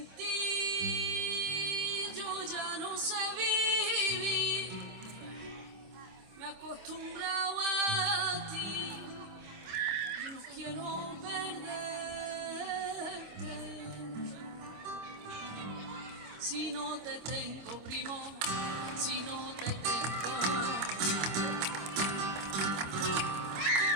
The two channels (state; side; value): late; left; 26 ms